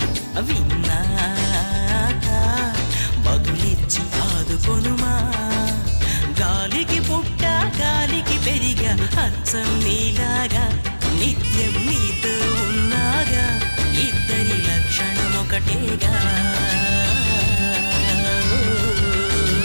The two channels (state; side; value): inverted; both; correlation -1.00